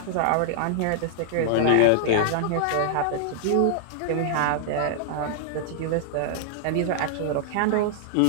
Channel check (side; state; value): both; different; correlation -0.01